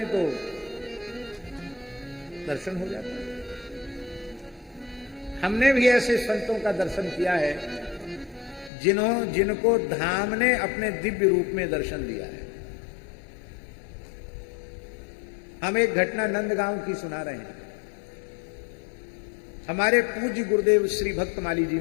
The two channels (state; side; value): drops out; right; at 8.7 s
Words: तो दर्शन हो जाता है। हमने भी ऐसे संतों का दर्शन किया है जिनको धाम ने अपने दिव्य रूप में दर्शन दिया है। हम एक घटना नंदगांव की सुना रहे हैं। हमारे पूज्य गुरुदेव श्री भक्तमाली जी